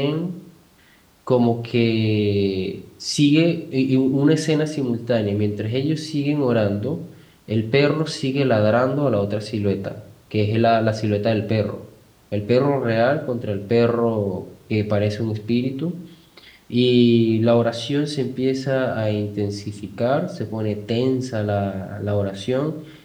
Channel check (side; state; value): both; identical; correlation 1.00